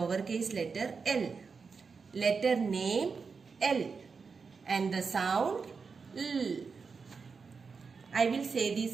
letter L. Letter name L and the sound L. I will say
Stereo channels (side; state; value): left; quieter; 5.1 dB